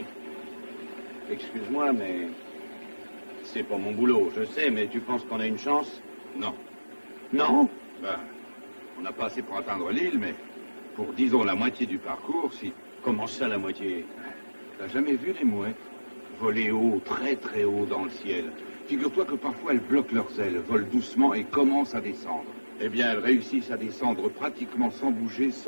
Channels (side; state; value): both; inverted; correlation -1.00